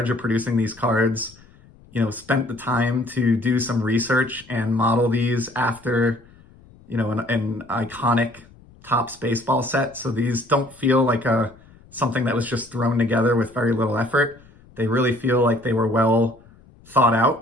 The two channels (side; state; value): left; noise; rumble, 26 dB below the sound